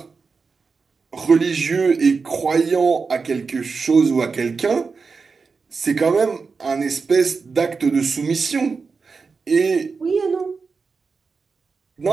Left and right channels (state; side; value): quieter; left; 4.8 dB